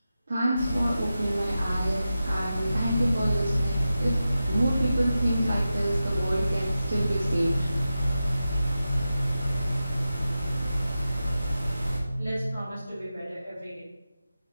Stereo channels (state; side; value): inverted; both; correlation -0.92